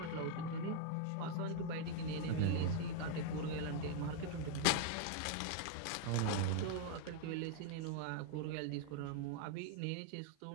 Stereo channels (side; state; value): both; different; correlation 0.00